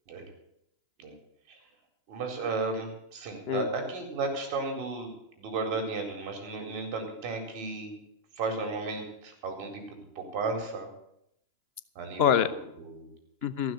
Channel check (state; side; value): late; left; 2.9 ms